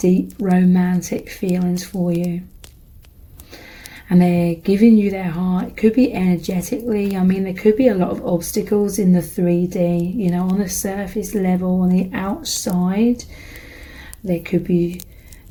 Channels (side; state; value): both; identical; correlation 1.00